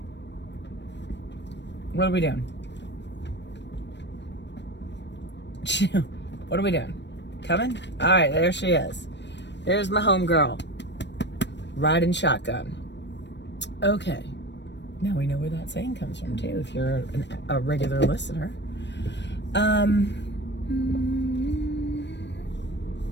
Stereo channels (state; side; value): late; right; 0.51 ms